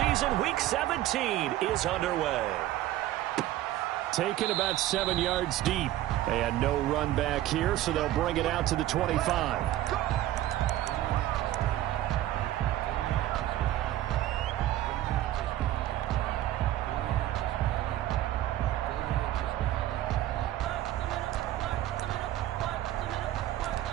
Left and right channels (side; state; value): left; quieter; 14.1 dB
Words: Week 17 is underway. Taken about 7 yards deep. They had no run back here, so they'll bring it out to the 25.